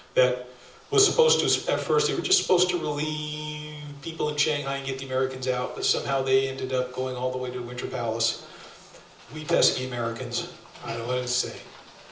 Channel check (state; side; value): identical; both; correlation 1.00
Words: that was supposed to, at first, they were just supposed to relieve people in Shanghai and get the Americans out, but somehow they ended up going all the way to Winter Palace. We pesky Americans. I don't know what to say.